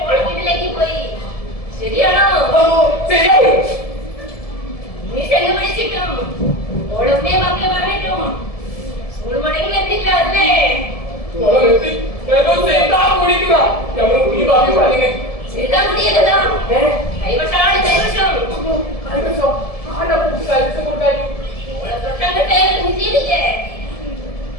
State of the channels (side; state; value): right; late; 1.7 ms